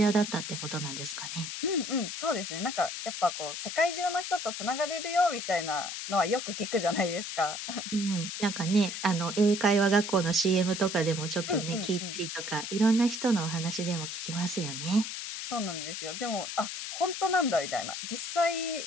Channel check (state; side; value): noise; left; hiss, 6 dB below the sound